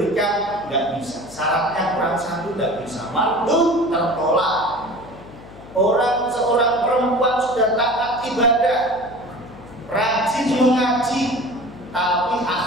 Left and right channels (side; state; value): left; noise; hum, 19 dB below the sound